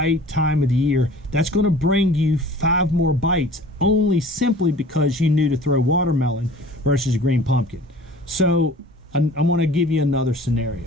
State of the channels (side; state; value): both; normal; correlation 0.45